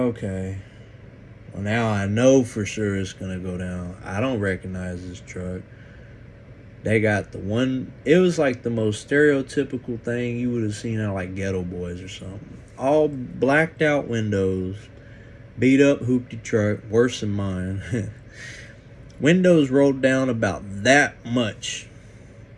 Well, now I know for sure it's gonna go down. I don't recognize this truck. They got the one, it was like the most stereotypical thing you would have seen out like Ghetto Boys or something. All blacked out windows, beat up hoopty truck, worse than mine. Windows rolled down about that much.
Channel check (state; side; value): identical; both; correlation 1.00